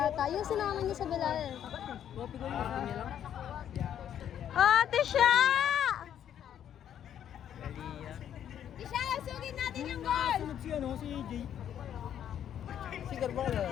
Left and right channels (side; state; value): right; quieter; 9.9 dB